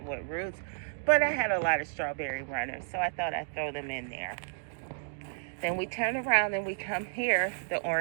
with roots, but I had a lot of strawberry runners, so I thought I'd throw them in there. Then we turn around and we come here, the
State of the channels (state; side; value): silent; left; digital silence